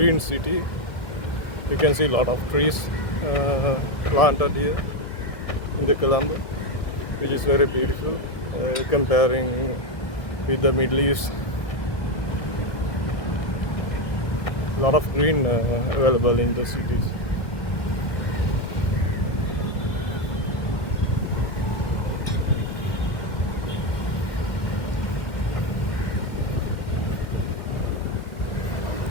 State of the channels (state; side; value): late; right; 1.7 ms